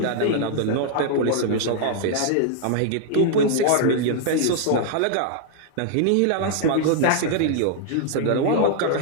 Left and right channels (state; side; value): different; both; correlation -0.01